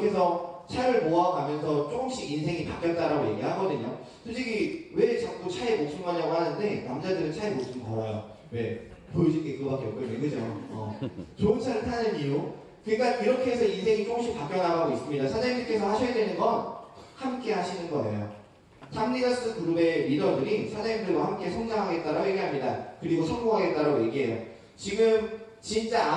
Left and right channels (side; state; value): both; identical; correlation 1.00